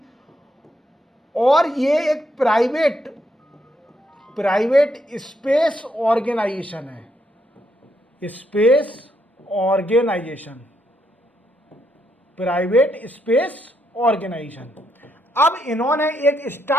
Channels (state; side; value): normal; both; correlation 0.77